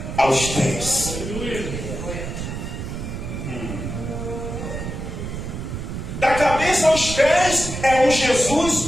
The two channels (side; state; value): right; noise; rumble, 6 dB below the sound